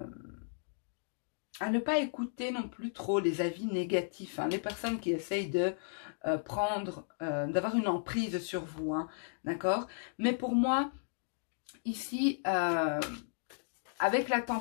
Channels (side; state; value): right; silent; digital silence